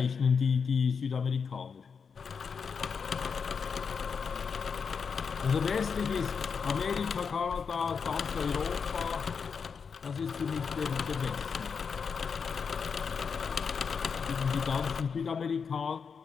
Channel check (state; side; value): quieter; right; 5.9 dB